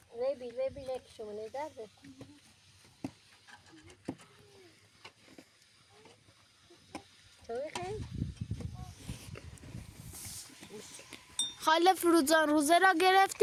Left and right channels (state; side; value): identical; both; correlation 1.00